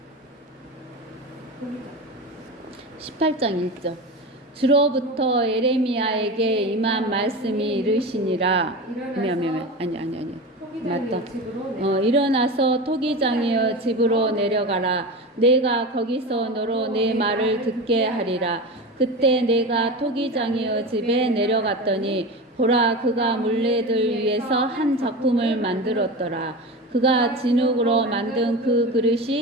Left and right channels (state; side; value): normal; both; correlation 0.26